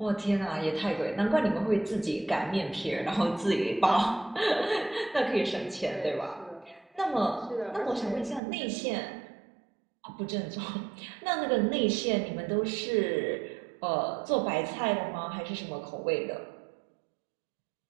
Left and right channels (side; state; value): left; drops out; at 8.4 s